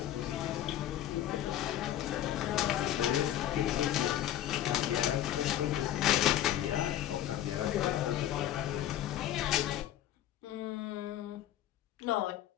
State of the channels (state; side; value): quieter; right; 12.2 dB